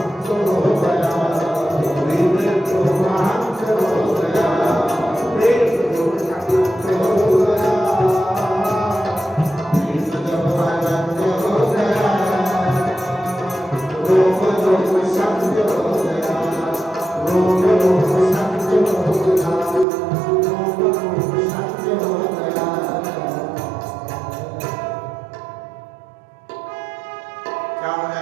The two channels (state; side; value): drops out; left; at 19.9 s